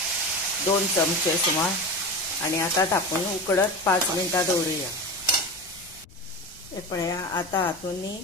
2 चमचे सुमार, आणि आता धापून उकडत 5 मिनटां दवरूया। हे पळया आता हातून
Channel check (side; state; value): left; noise; rumble, 23 dB below the sound